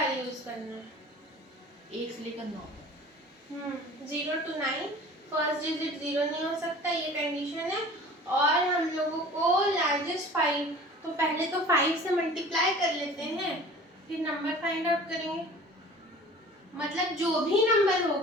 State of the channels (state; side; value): normal; both; correlation 0.44